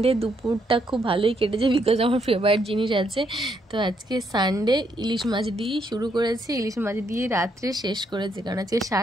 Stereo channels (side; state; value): both; normal; correlation 0.75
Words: দুপুরটা খুব ভালোই কেটেছে, বিকজ আমার ফেভারিট জিনিস আছে। তো আজকে সানডে ইলিশ মাছ দিয়েই শুরু করেছি, ইলিশ মাছ দিয়ে রাত্রে শেষ করেছি, কারণ আজকে